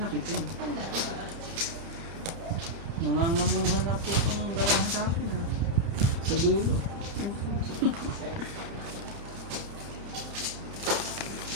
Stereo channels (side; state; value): left; late; 30 ms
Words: kita. Nangangamuhan na po itong barahan sa akin ah. Sa dulo.